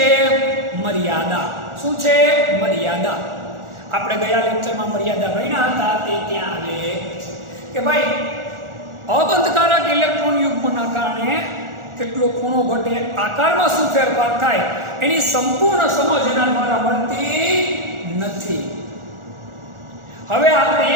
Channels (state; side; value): late; left; 1.4 ms